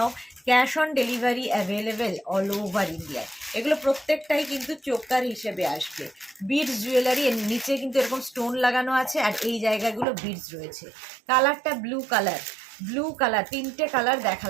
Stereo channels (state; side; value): drops out; left; at 10.1 s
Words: cash on delivery available all over ইন্ডিয়ায়। এগুলো প্রত্যেকটাই কিন্তু চোকার হিসেবে আসবে। বিটস জুয়েলারি, এর নিচে কিন্তু এরকম স্টোন লাগানো আছে আর এই জায়গাগুলো বিটস রয়েছে। কালারটা ব্লু কালার, তিনটে কালার